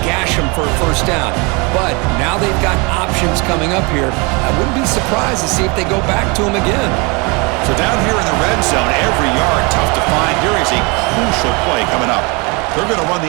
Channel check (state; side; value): quieter; left; 29.3 dB